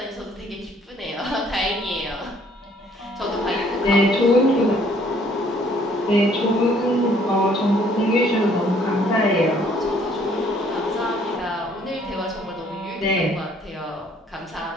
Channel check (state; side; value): normal; both; correlation 0.61